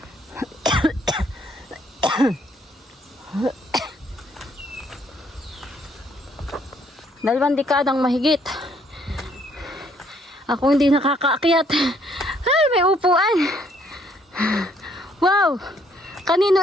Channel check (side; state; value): both; normal; correlation 0.66